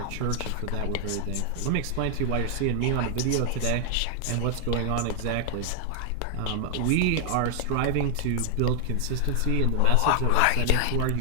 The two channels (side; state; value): both; different; correlation 0.00